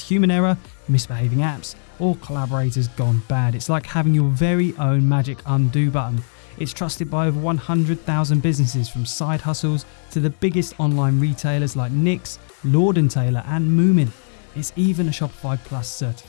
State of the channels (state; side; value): silent; right; digital silence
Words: human error, misbehaving apps, or collaborators gone bad. It's like having your very own magic undo button. It's trusted by over 100,000 businesses, from side hustles to the biggest online retailers like Nick's, Lord & Taylor, and Moomin. It's even a Shopify Plus